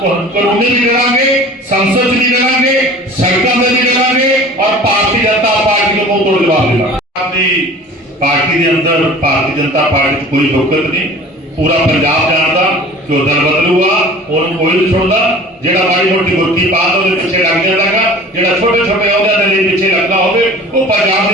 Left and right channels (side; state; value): both; normal; correlation 0.43